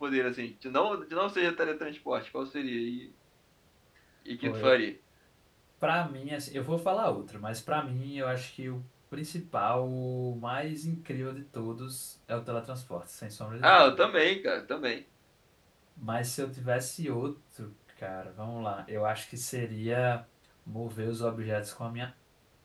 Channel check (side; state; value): both; identical; correlation 1.00